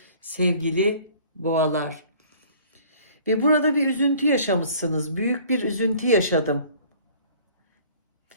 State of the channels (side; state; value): both; inverted; correlation -0.52